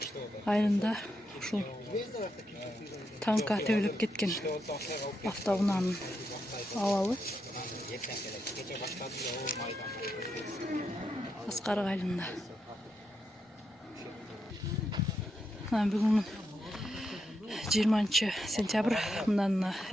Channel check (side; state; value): both; normal; correlation 0.83